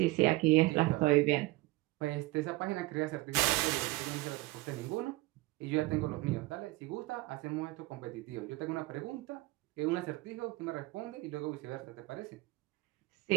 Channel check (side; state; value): left; quieter; 20.7 dB